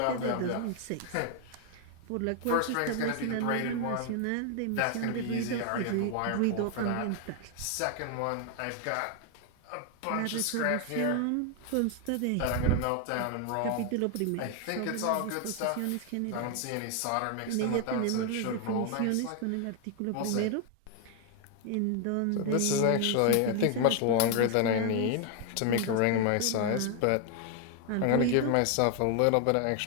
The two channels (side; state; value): both; different; correlation 0.00